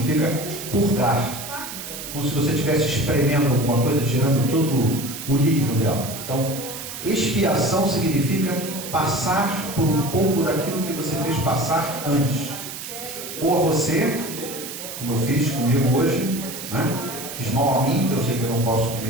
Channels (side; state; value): right; noise; hiss, 9 dB below the sound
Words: purgar, como se você estivesse espremendo alguma coisa, tirando todo o líquido dela. Então, expiação significa passar por um pouco daquilo que você fez passar antes. Ou a você, como eu fiz comigo hoje, né? Fiz mal a mim, eu sei que eu não posso